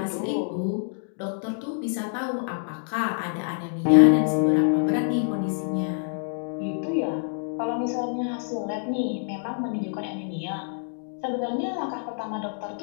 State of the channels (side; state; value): right; silent; digital silence